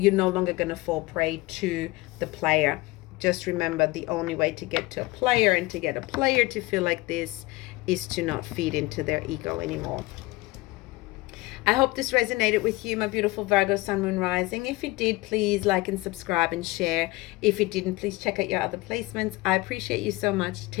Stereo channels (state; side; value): quieter; right; 21.3 dB